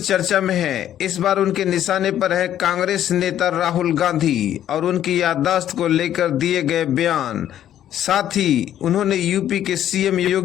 में है। इस बार उनके निशाने पर है कांग्रेस नेता राहुल गांधी और उनकी याददाश्त को लेकर दिए गए बयान। साथ ही उन्होंने यूपी के सीएम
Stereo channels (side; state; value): right; quieter; 11.2 dB